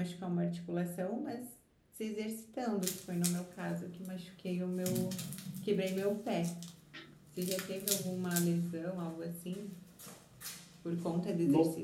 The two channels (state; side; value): identical; both; correlation 1.00